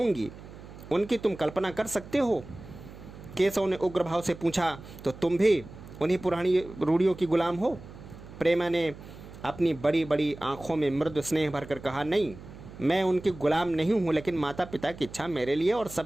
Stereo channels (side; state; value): right; noise; hum, 16 dB below the sound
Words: उनकी तुम कल्पना कर सकते हो। केशव ने उग्र भाव से पूछा, तो तुम भी उन्हीं पुरानी रूढ़ियों की गुलाम हो? प्रेमा ने अपनी बड़ी बड़ी आंखों में मृदु स्नेह भरकर कहा, नहीं, मैं उनकी गुलाम नहीं हूँ, लेकिन माता पिता की इच्छा मेरे लिए और